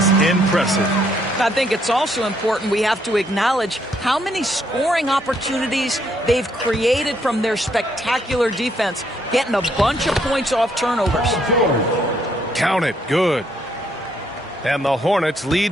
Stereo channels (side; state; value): both; normal; correlation 0.71